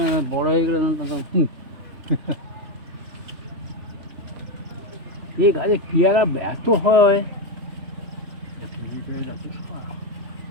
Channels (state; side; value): late; left; 3.4 ms